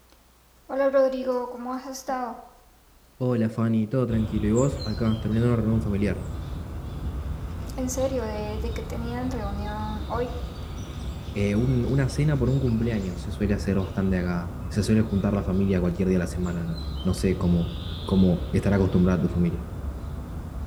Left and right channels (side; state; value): both; identical; correlation 1.00